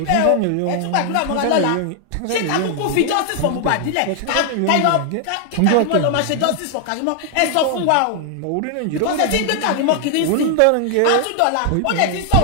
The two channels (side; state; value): both; different; correlation 0.00